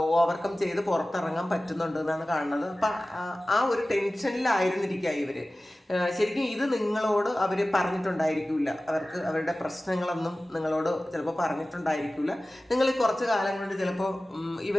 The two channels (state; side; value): normal; both; correlation 0.97